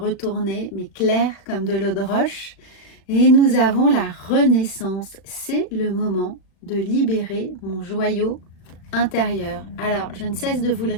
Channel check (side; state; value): right; late; 37 ms